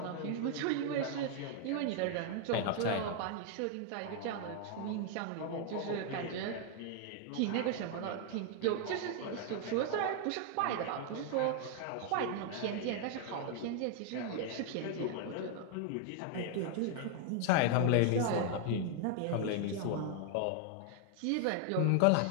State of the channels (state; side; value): different; both; correlation 0.00